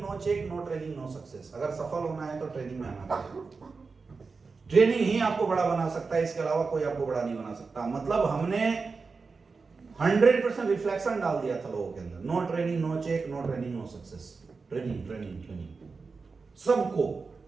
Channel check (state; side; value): quieter; left; 4.5 dB